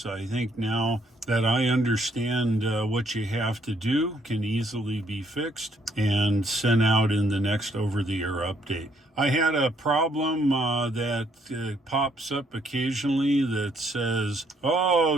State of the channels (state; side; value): normal; both; correlation 0.69